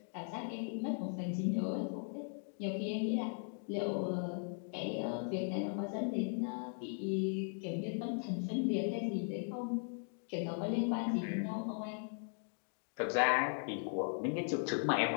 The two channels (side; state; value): right; silent; 52 dB below the other